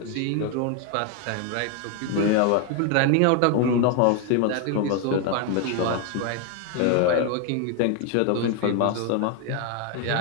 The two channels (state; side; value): different; both; correlation 0.01